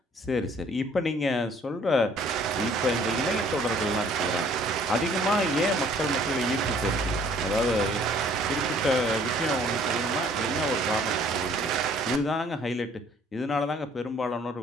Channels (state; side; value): normal; both; correlation 0.58